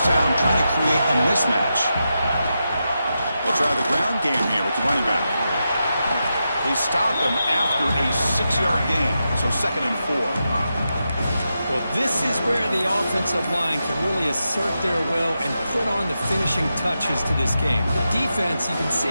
down, trying to create a mismatch. They'll try the ground game here with the running back. They stop him after a 6-yard gain, so second and 4. Well, this is where the offensive line can really assert their will and put on the finishing touches to this game. The defense, you can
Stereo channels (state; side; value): inverted; both; correlation -0.88